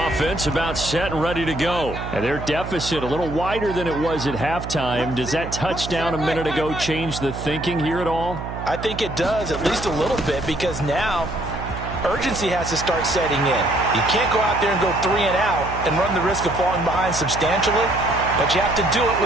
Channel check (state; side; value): noise; right; hum, 8 dB below the sound